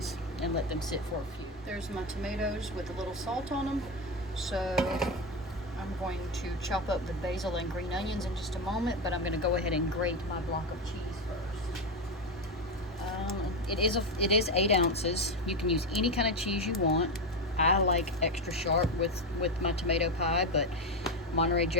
and let them sit for a few. There's my tomatoes with a little salt on them. So I'm going to chop up the basil and green onions in just a moment, but I'm going to go ahead and grate my block of cheese first. It is 8 ounces. You can use any kind of cheese you want. I like extra sharp with my tomato pie, but Monterey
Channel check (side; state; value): both; normal; correlation 0.13